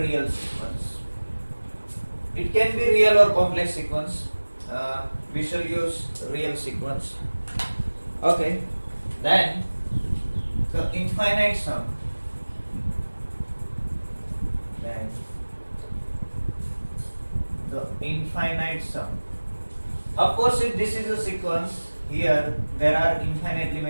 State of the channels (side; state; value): both; inverted; correlation -1.00